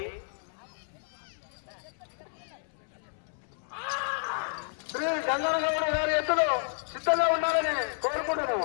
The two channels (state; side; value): silent; right; 57 dB below the other